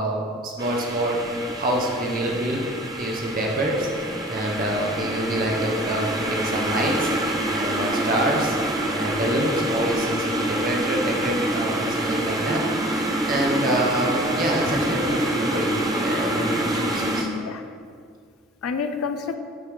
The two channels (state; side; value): normal; both; correlation 0.45